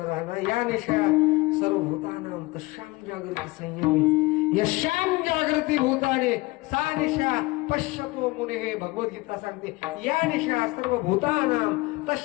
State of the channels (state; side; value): quieter; right; 22.0 dB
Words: राहणं. या निशा सर्व भूतानां तशाम जागृती संयमी यशाम जागृती भूताने सा निशा पश्यतो मुने. भगवद्गीता सांगते या निशा सर्व भूतानां